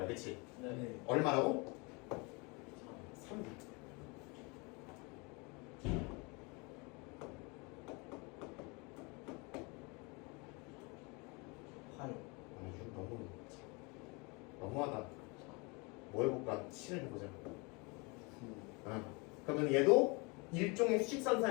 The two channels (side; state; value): right; quieter; 29.0 dB